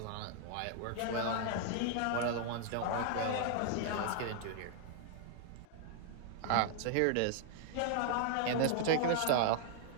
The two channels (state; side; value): different; both; correlation 0.00